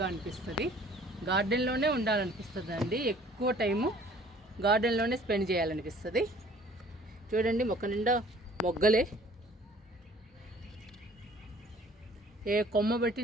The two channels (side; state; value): both; normal; correlation 0.54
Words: అనిపిస్తుంది. గార్డెన్లోనే ఉండాలనిపిస్తుంది అండి. ఎక్కువ టైము గార్డెన్లోనే స్పెండ్ చేయాలనిపిస్తుంది. చూడండి మొక్క నిండా మొగ్గలే, ఏ కొమ్మ